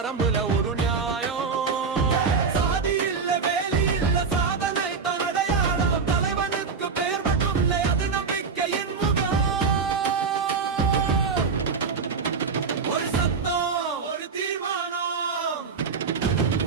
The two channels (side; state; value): left; quieter; 5.3 dB